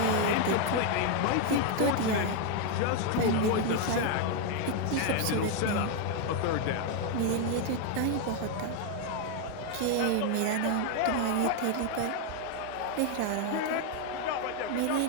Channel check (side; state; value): both; different; correlation 0.01